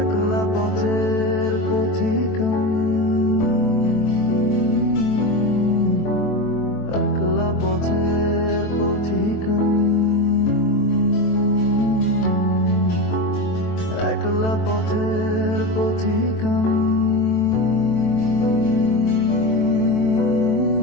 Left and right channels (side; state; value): right; late; 23 ms